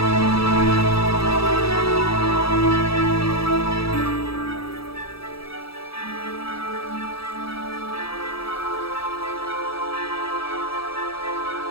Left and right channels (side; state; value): right; late; 0.77 ms